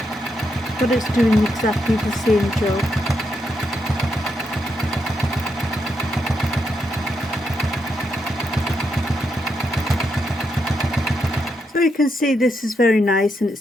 but it's doing exactly the same job. So you can see this is very nice and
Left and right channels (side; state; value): both; normal; correlation 0.81